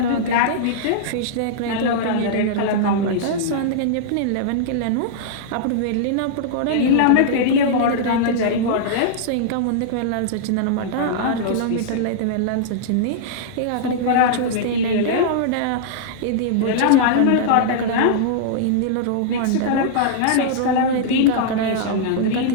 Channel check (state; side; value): different; both; correlation -0.02